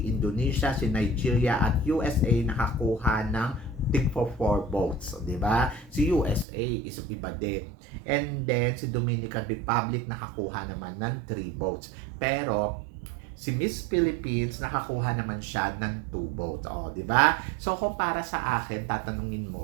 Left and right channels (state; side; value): drops out; left; at 6.5 s